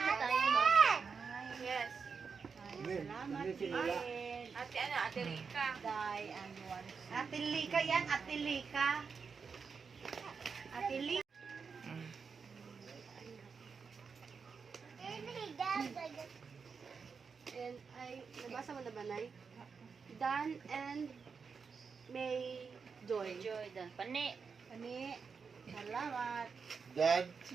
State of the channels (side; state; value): left; quieter; 5.5 dB